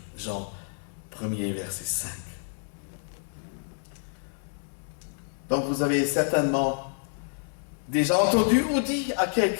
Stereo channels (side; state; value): right; silent; digital silence